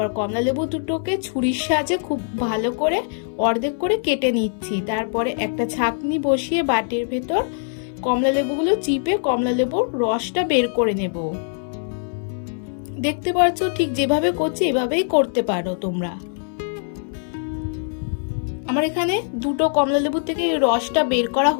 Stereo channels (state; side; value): silent; right; 64 dB below the other